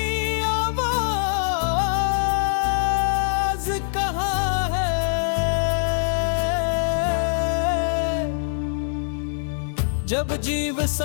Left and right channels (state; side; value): silent; right; digital silence